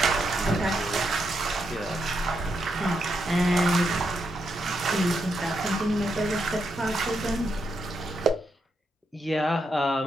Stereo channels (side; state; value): both; normal; correlation 0.81